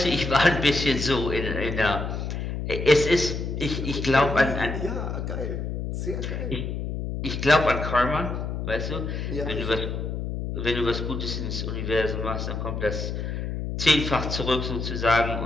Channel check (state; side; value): noise; left; hum, 4 dB below the sound